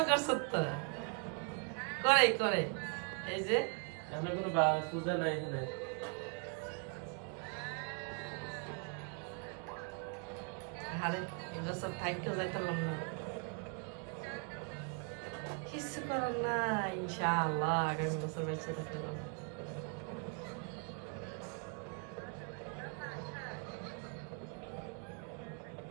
করছ তো করে এই যে আমরা কোনো পূজা নাই এখানে আরে এগুলো সব থাইকেও যাইতাম না কিছু করার না ইনশাআল্লাহ আগামী বছর বেঁচে থাকলাম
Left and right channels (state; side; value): quieter; left; 37.5 dB